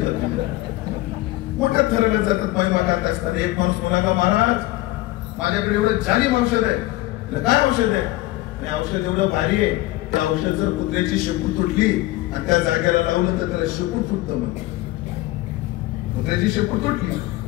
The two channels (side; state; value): right; quieter; 18.1 dB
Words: मोठ्या थराला जातात महिमा गात असतात. एक माणूस म्हणाला, महाराज माझ्याकडे एवढं जालिम औषध आहे. काय औषध आहे? आणि औषध एवढं भारी आहे, त्या औषध जर कुत्र्याची शेपूट तुटली आणि त्या जागेला लावलं तर त्याला शेपूट तुटतं. म्हणते कुत्र्याची शेपूट तुटली